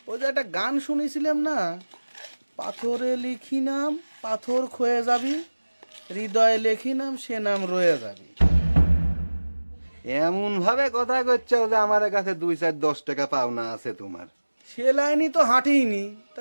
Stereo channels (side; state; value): both; inverted; correlation -1.00